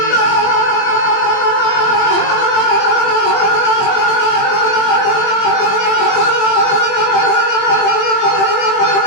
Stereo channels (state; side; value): late; right; 20 ms